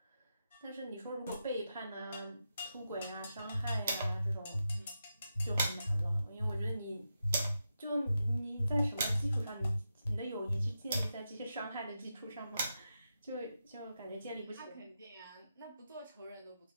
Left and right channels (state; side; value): inverted; both; correlation -0.87